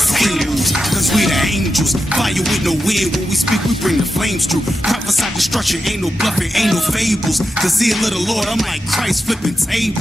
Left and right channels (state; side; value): normal; both; correlation 0.88